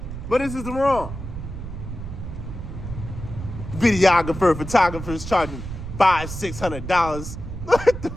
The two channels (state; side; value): noise; right; rumble, 8 dB below the sound